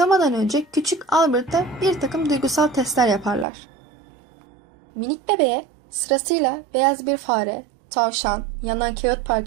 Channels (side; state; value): left; drops out; at 3.5 s